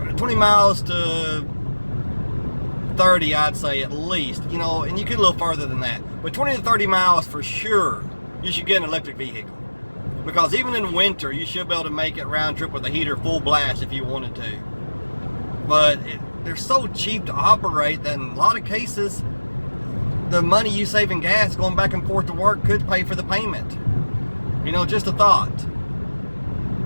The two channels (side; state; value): both; inverted; correlation -1.00